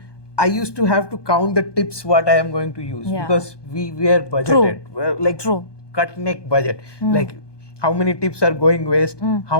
I used to have to count the tips what I am going to use, because we were budgeted. Cut neck budget. Like how many tips are going waste,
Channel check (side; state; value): right; late; 1.2 ms